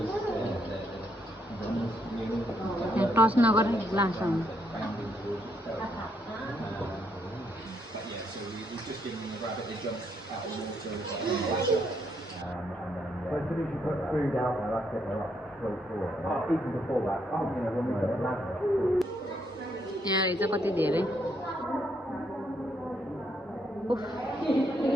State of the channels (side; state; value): both; normal; correlation 0.75